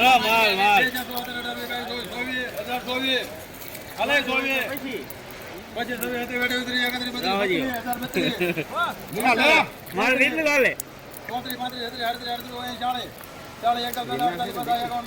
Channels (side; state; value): both; identical; correlation 1.00